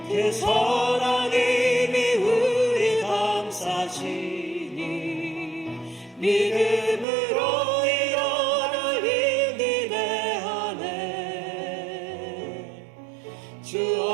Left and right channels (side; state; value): left; drops out; at 7.1 s